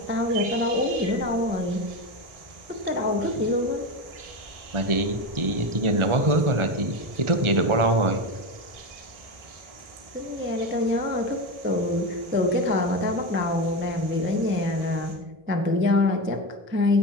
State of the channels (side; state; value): left; late; 1.4 ms